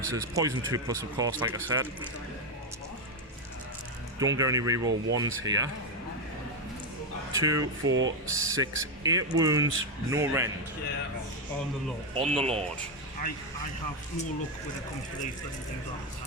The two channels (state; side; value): normal; both; correlation 0.06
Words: Poison 2+, of course, like I said. Don't get any reroll 1s here. 2, 4, 6, 8 wounds, no rend. Yeah, on the Lord. On the Lord. I have more luck when it comes to these than things like